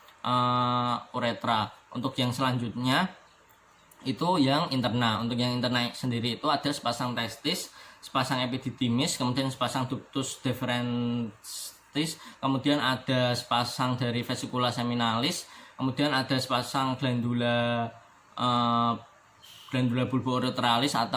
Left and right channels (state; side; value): identical; both; correlation 1.00